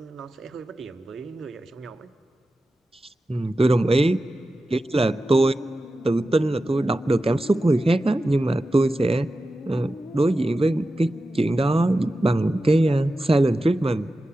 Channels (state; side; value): normal; both; correlation 0.93